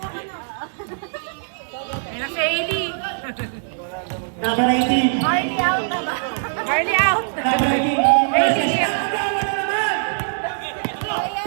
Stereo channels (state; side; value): silent; left; digital silence